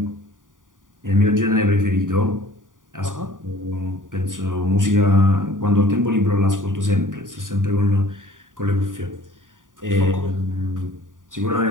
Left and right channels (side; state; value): left; late; 0.88 ms